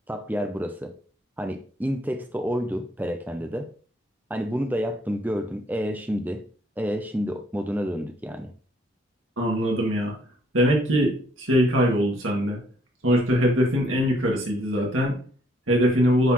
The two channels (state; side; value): normal; both; correlation 0.66